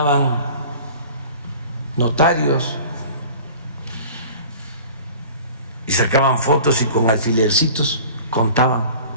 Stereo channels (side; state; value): both; inverted; correlation -0.43